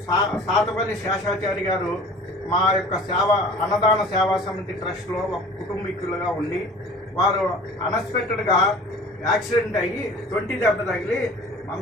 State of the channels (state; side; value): normal; both; correlation 0.44